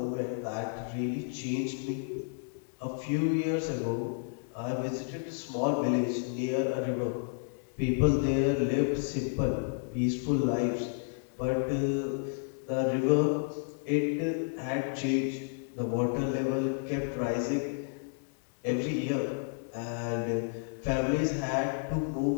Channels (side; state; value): right; silent; digital silence